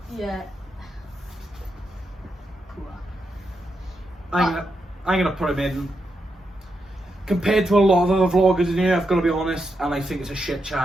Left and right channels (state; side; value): normal; both; correlation 0.84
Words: yeah, poor. I'm gonna put him in. Compared to a lot of other vloggers in here, I've got to be honest, and I think it's a shit